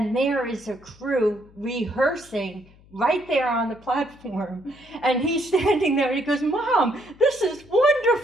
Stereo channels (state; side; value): noise; left; hum, 26 dB below the sound